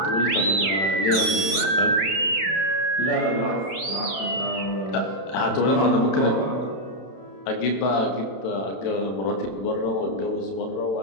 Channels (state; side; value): late; right; 31 ms